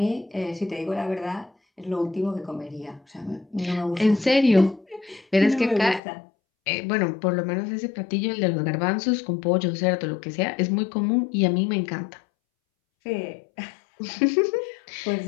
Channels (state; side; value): drops out; right; at 6.0 s